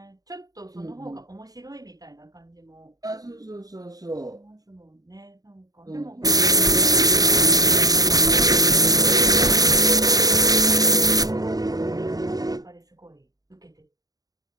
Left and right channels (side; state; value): left; late; 0.18 ms